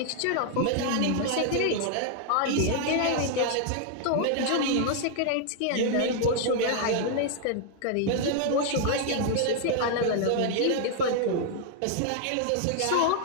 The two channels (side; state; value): both; different; correlation 0.00